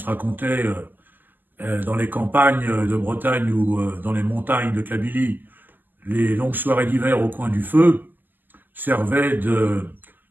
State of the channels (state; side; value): late; left; 0.088 ms